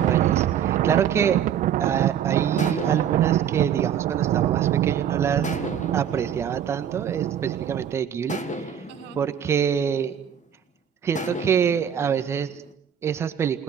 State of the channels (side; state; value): left; quieter; 9.0 dB